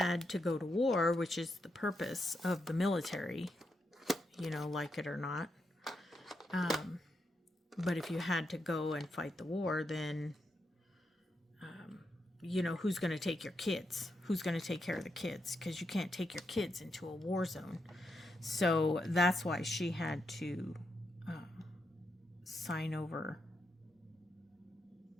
to go to war, which is the purpose of the military, you know, like it or not, but if you had to go and fight the war, then you know, who's going to take your kids? Who's going to take care of the kids? Because you can't take your kids into a war zone. So that's why she had to sign over.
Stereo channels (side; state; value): both; normal; correlation 0.83